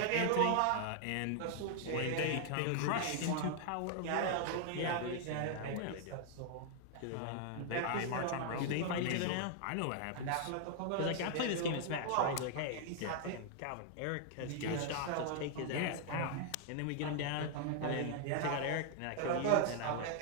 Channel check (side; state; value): both; different; correlation 0.00